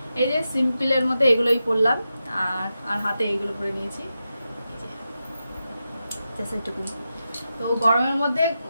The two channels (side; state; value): both; inverted; correlation -0.89